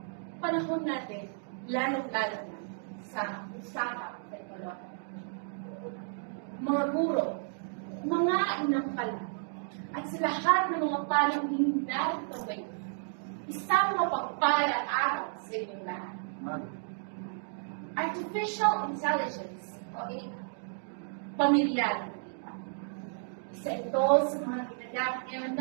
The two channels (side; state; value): left; silent; digital silence